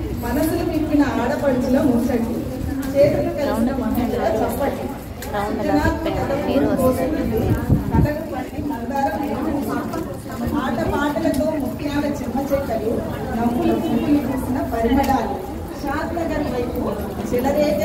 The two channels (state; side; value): identical; both; correlation 1.00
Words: మనసులు విప్పిన ఆడపడుచుల ముచ్చటి, చేతులు కలిసిన మహిళల చప్పటి, ఆట పాటలతో ముఖ్యాల చిన్న చెక్కలు, నవ్వులు పువ్వులు పూసిన పరిమళాలు, షాద్ నగర్ వైపు